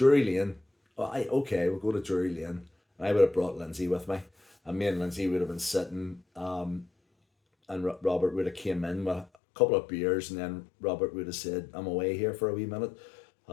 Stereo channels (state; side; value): drops out; right; at 9.2 s